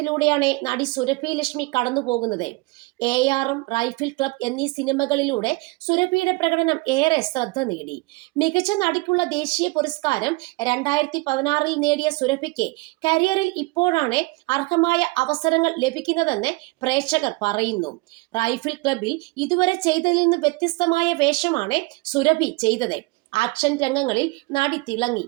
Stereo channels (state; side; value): quieter; left; 24.7 dB